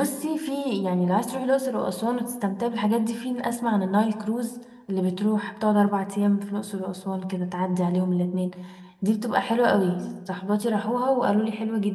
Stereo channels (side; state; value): both; identical; correlation 1.00